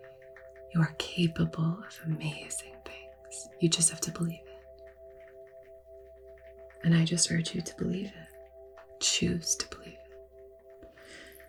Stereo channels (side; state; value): both; identical; correlation 1.00